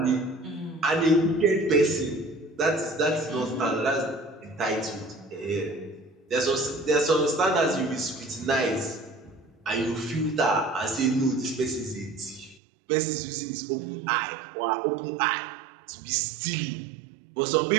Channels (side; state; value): left; drops out; at 12.6 s